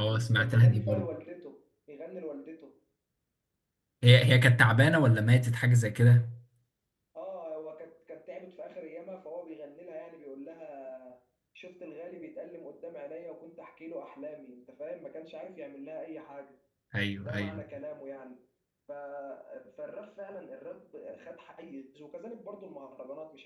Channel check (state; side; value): identical; both; correlation 1.00